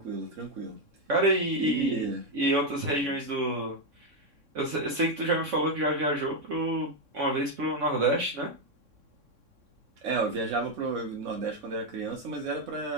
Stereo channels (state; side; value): late; left; 3.6 ms